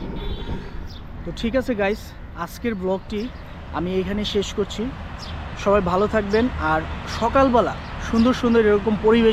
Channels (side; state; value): both; identical; correlation 1.00